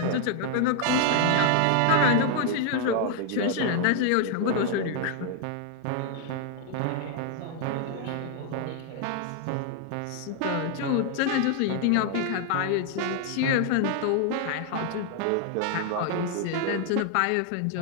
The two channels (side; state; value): both; different; correlation 0.00